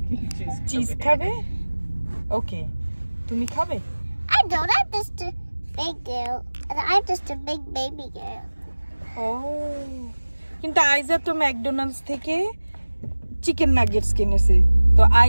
চিজ খাবে? ওকে, তুমি খাবে? I don't. I'm just a big girl. And I'm just a big baby girl. ও, কিন্তু আইজা তো ম্যাকডোনাল্ডস থেকে চিকেন নাগেটস কিনেছে, তো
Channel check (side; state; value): both; inverted; correlation -1.00